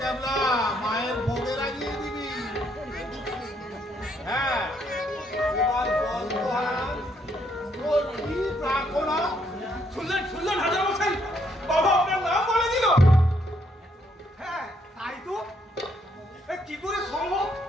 মায়ের ভোগে লাগিয়ে দিবি। হ্যাঁ, এবার বল তোর কি প্রার্থনা? শুনলেন হাজার মশাই, বাবা আপনার নাম বলে দিল। হ্যাঁ তাই তো, কি করে সম্ভব?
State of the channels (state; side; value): normal; both; correlation 0.71